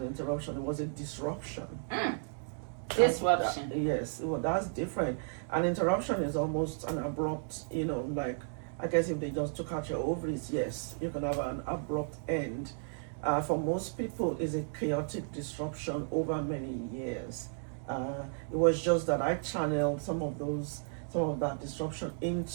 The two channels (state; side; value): silent; left; digital silence